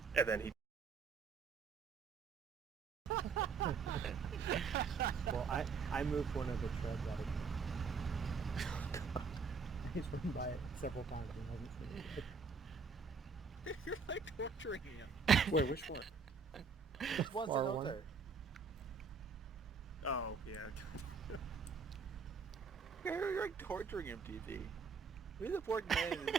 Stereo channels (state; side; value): quieter; left; 5.1 dB